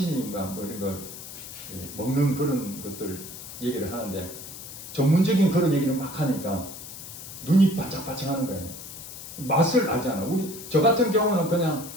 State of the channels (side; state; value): left; noise; hiss, 12 dB below the sound